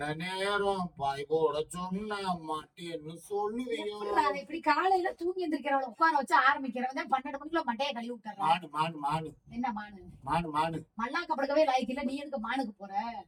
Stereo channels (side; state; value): both; identical; correlation 1.00